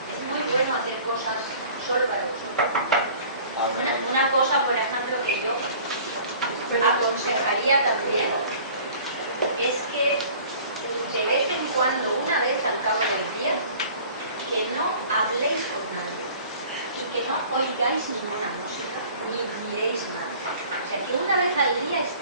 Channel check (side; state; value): both; inverted; correlation -0.48